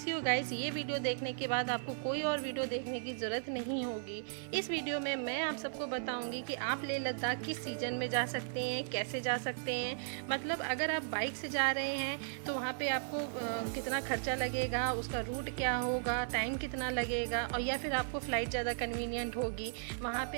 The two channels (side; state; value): left; silent; 54 dB below the other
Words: you guys, ये वीडियो देखने के बाद आपको कोई और वीडियो देखने की ज़रूरत नहीं होगी। इस वीडियो में मैं आप सबको बताऊँगी कि आप लेह लद्दाख किस सीजन में जा सकते हैं, कैसे जा सकते हैं। मतलब अगर आप बाइक से जा रहे हैं तो वहाँ पे आपको कितना खर्चा लगेगा, उसका रूट क्या होगा, टाइम कितना लगेगा, और या फिर आपको फ़्लाइट ज़्यादा कन्वीनियंट होगी, वहाँ पे